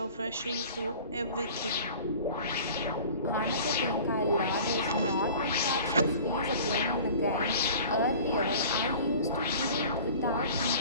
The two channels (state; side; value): inverted; both; correlation -0.43